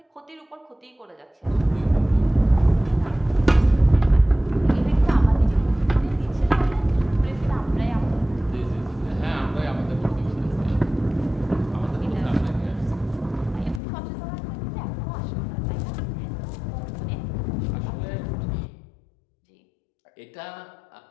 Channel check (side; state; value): right; drops out; at 13.8 s